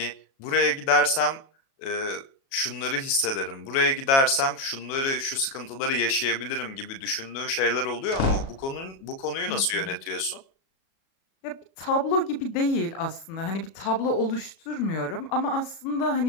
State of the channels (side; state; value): right; late; 37 ms